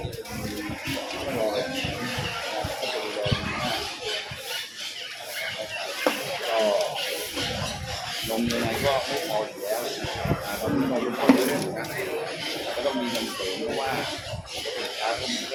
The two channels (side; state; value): both; identical; correlation 1.00